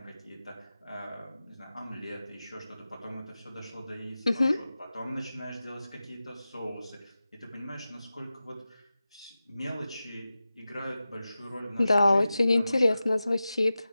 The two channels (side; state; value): both; inverted; correlation -0.94